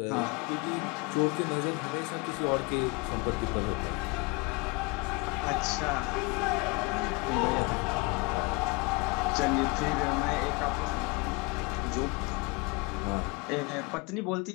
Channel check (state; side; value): quieter; right; 27.8 dB